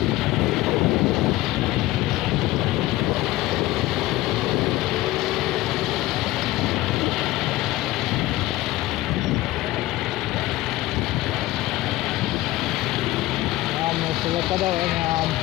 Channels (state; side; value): quieter; right; 17.3 dB